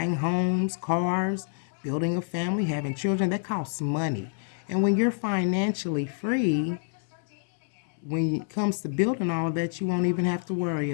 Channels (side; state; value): right; silent; digital silence